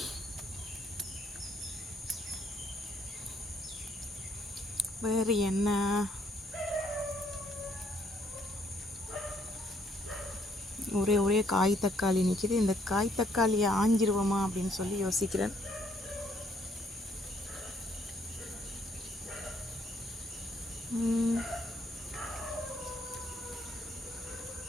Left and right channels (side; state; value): both; normal; correlation 0.68